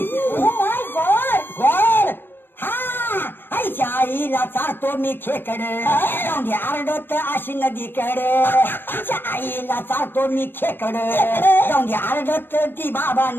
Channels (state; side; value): late; right; 0.098 ms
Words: Oh my God. हा, आईच्या आईला चालतो मी खेकड जाऊन आरडत अशी नदीकडे. आईच्या आईला चालतो मी खेकड जाऊन आरडत ती बाबा